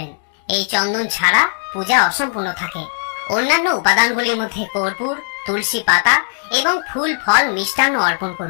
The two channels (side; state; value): right; silent; 67 dB below the other